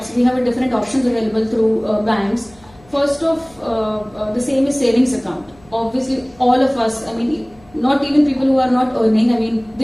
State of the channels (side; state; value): left; noise; hum, 27 dB below the sound